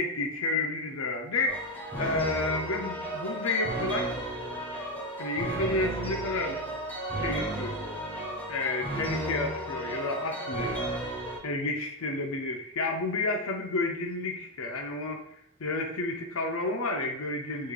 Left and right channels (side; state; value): both; normal; correlation 0.07